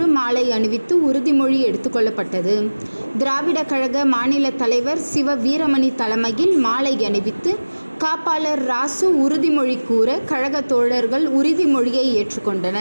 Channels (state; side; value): inverted; both; correlation -1.00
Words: மாலை அணிவித்து உறுதிமொழி எடுத்துக்கொள்ளப்பட்டது. திராவிட கழக மாநில தலைவர் சிவ வீரமணி தலைமையில் மாலை அணிவித்து காப்பாளர் ராசு உறுதிமொழி கூற கழக தோழர்கள் உறுதிமொழியை